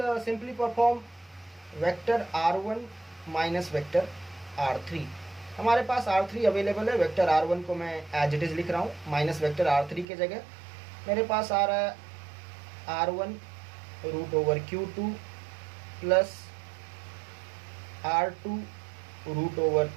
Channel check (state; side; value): drops out; left; at 10.1 s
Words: simply perform vector r1 minus vector r3। हमारे पास r3 अवेलेबल है, वेक्टर r1 को मैं as it is लिख रहा हूँ, minus vector r3 के जगह मेरे पास आ रहा है r1 root over q2 plus r2 root over